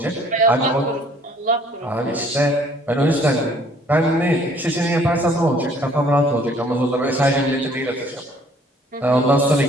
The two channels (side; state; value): both; normal; correlation 0.58